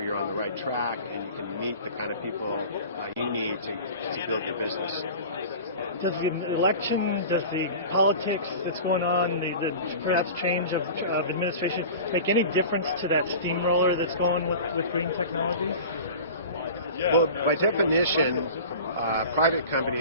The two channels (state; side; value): inverted; both; correlation -0.37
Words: you're on the right track and you can meet the kind of people you need to build your business. Does the election, does the politics that's going on, the perhaps change of administration, make any difference to that steamroller that's going with green technologies? Well, by definition, private